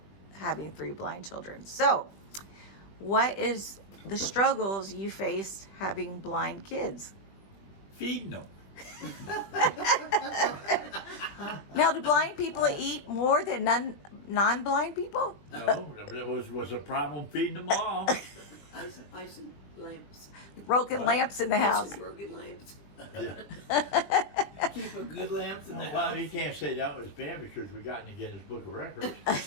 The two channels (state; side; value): late; right; 21 ms